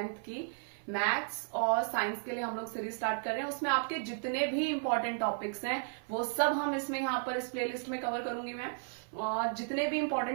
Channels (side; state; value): left; silent; 55 dB below the other